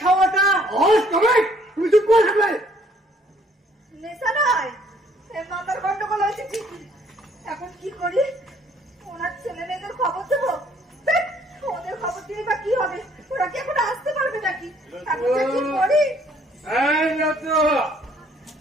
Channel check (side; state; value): both; normal; correlation 0.62